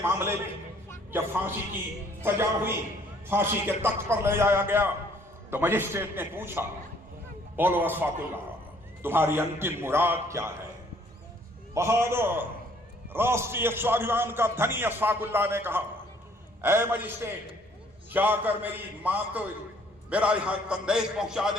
मामले में जब फांसी की सजा हुई, फांसी के तख्त पर ले जाया गया, तो मजिस्ट्रेट ने पूछा, बोलो अशफाकुल्लाह तुम्हारी अंतिम मुराद क्या है? बहादुर राष्ट्रीय स्वाभिमान का धनी अशफाकुल्लाह ने कहा, ऐ मजिस्ट्रेट, जाकर मेरी मां को मेरा यहां संदेश पहुंचा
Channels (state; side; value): normal; both; correlation 0.61